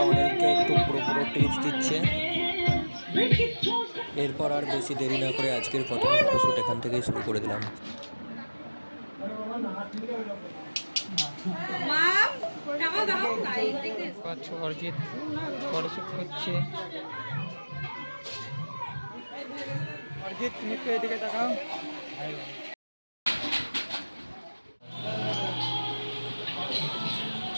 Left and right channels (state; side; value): inverted; both; correlation -1.00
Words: অনিলকে একটু পুরো টিপস দিচ্ছে। এরপর আর বেশি দেরি না করে আজকের প্রথম ফটোশ্যুট এখান থেকেই শুরু করে দিলাম। অরিজিৎ ফটোশ্যুট করছে। অরিজিৎ, তুমি একটু এদিকে তাকাও।